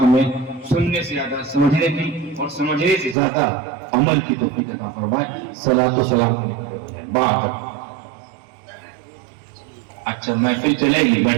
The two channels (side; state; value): left; drops out; at 3.2 s